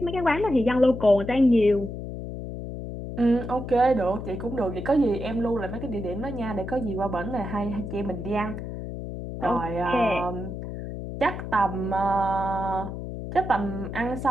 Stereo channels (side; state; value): left; noise; hum, 7 dB below the sound